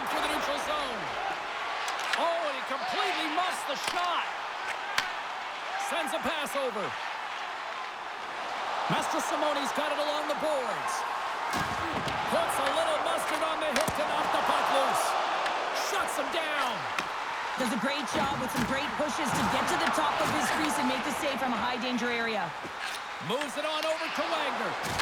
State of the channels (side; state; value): both; identical; correlation 1.00